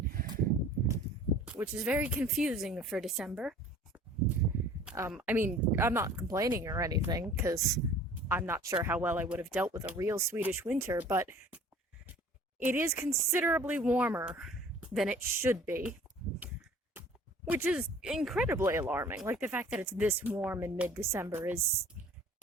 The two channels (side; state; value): both; normal; correlation 0.49